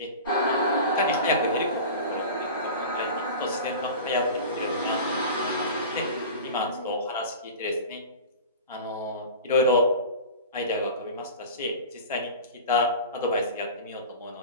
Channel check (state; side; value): inverted; both; correlation -0.33